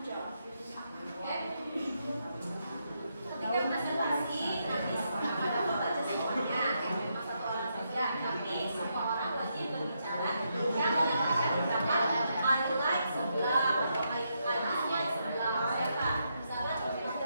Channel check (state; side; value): inverted; both; correlation -0.80